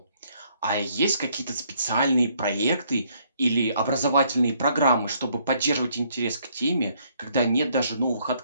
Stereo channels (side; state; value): both; inverted; correlation -0.67